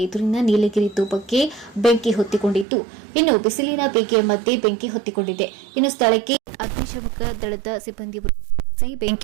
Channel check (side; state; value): left; drops out; at 2.7 s